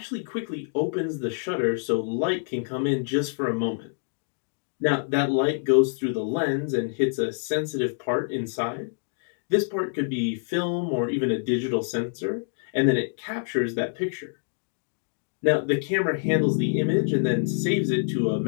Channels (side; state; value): right; silent; digital silence